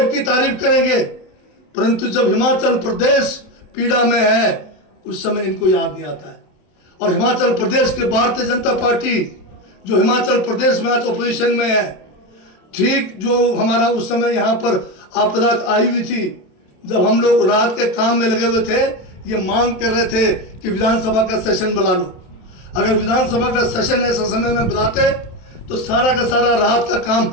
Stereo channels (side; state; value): right; late; 27 ms